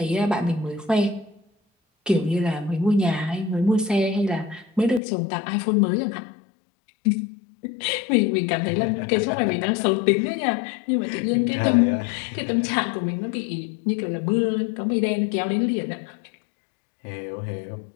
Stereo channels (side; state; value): right; drops out; at 5.0 s